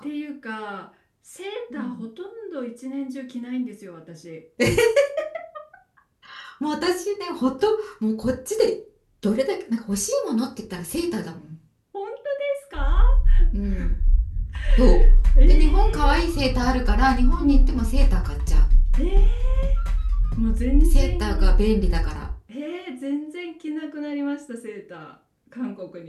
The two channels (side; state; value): both; identical; correlation 1.00